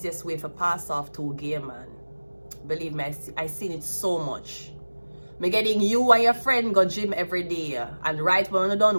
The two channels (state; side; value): inverted; both; correlation -1.00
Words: way to pass off to a gay man. Believe me, I seen it so much. Me getting you and your friend go gym every day, and right when you